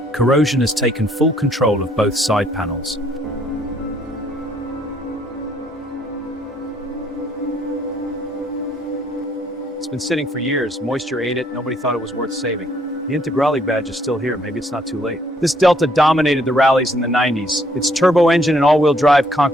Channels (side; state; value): both; normal; correlation 0.66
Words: corrosion has taken full control of both side panels. It's been sitting for years, moisture ate it, nobody thought it was worth saving. The Integrale badge is still here, maybe it's not too late. This Delta dominated the rallies in the 90s. Its turbo engine and all-wheel drive